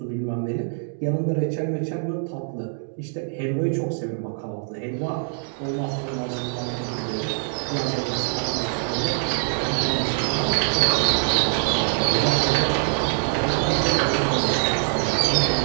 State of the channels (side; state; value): left; silent; digital silence